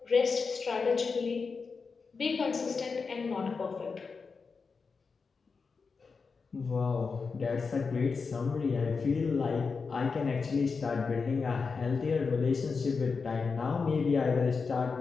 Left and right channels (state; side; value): quieter; right; 4.9 dB